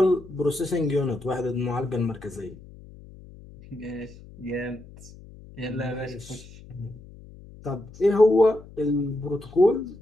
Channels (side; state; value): left; noise; hum, 19 dB below the sound